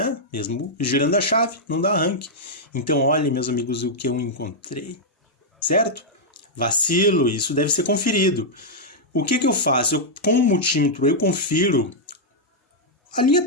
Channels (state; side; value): normal; both; correlation -0.06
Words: Mesmo girando a chave, não dá arranque. Então, olhem, meus amigos, o que eu encontrei, certo? Vacilo, isso deve ser conferido. O que eu faço? Com o multímetro, eu confiro a